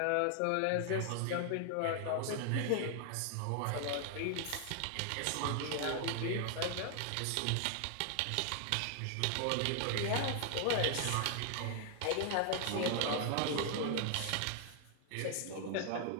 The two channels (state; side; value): different; both; correlation 0.00